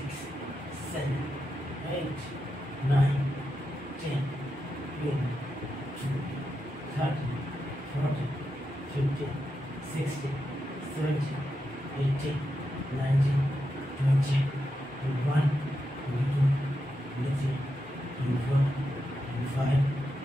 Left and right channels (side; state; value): both; normal; correlation 0.87